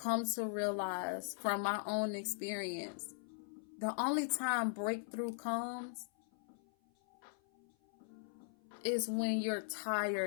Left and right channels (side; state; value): right; silent; 51 dB below the other